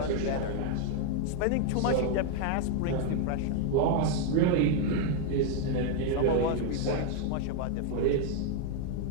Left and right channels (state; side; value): different; both; correlation 0.00